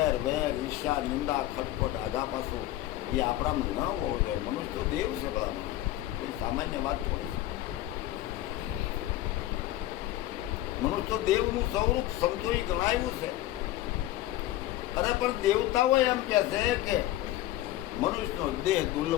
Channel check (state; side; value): quieter; right; 14.9 dB